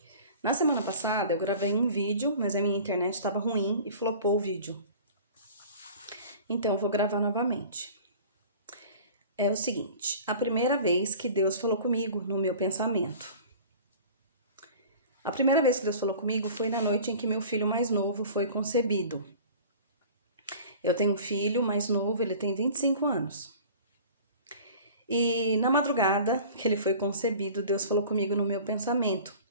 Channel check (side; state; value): both; inverted; correlation -0.42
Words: Na semana passada eu gravei um vídeo, mas a minha internet estava ruim e flopou o vídeo. Então eu vou gravar novamente. É o seguinte, a primeira vez que Deus falou comigo no meu pensamento. A primeira vez que Deus falou comigo foi na noite em que meu filho mais novo foi concebido. Eu tenho um filho mais novo, ele tem 25 anos. E na madrugada que ele foi concebido, Deus falou comigo no meu pensamento